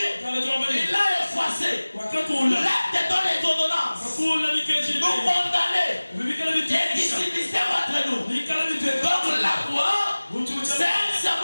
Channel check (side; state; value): both; inverted; correlation -1.00